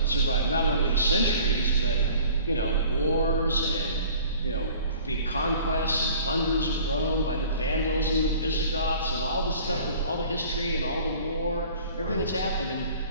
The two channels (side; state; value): both; inverted; correlation -0.48